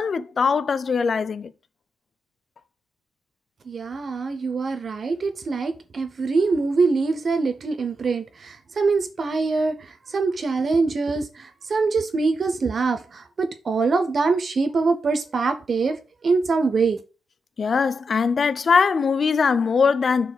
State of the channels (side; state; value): both; normal; correlation 0.85